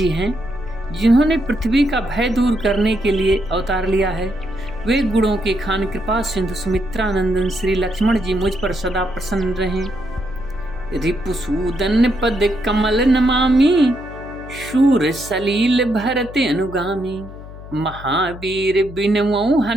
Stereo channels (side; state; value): left; noise; hum, 15 dB below the sound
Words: हैं, जिन्होंने पृथ्वी का भय दूर करने के लिए अवतार लिया है। वे गुणों के खान कृपा सिंधु सुमित्रानंदन श्री लक्ष्मण जी मुझ पर सदा प्रसन्न रहें। रिपुसूदन पद कमल नमामि, शूर सलील भरत अनुगामी। महावीर बिनवो